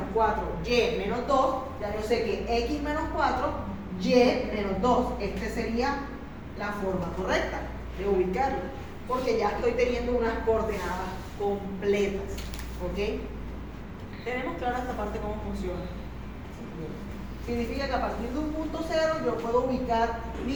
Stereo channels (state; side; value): identical; both; correlation 1.00